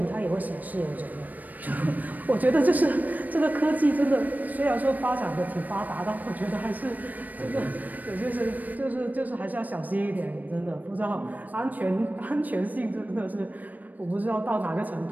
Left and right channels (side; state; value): left; late; 0.082 ms